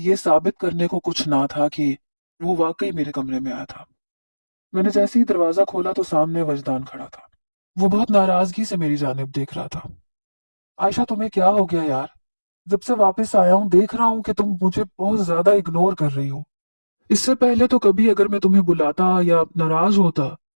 ये साबित करने को कुछ ना था कि वो वाकई मेरे कमरे में आया था। मैंने जैसे ही दरवाजा खोला तो सामने वजदान खड़ा था। वो बहुत नाराजगी से मेरी जानिब देख रहा था। आयशा, तुम्हें क्या हो गया यार? जब से वापस आया हूं देख रहा हूं कि तुम मुझे बहुत ज्यादा इग्नोर कर रही हो। इससे पहले तो कभी अगर मैं तुम्हें बुलाता या नाराज होता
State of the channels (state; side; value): inverted; both; correlation -1.00